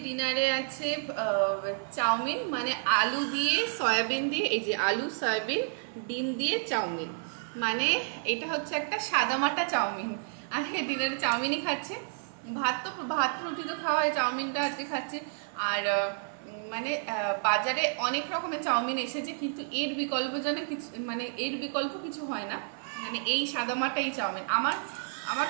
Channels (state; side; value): silent; left; 58 dB below the other